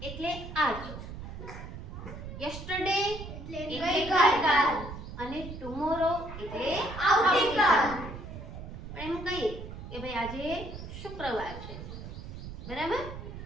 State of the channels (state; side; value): noise; right; rumble, 10 dB below the sound